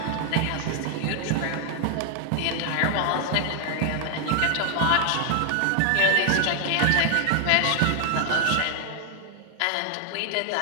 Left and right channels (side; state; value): both; different; correlation 0.00